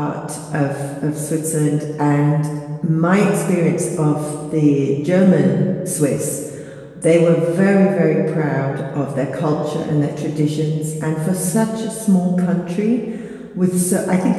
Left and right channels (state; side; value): identical; both; correlation 1.00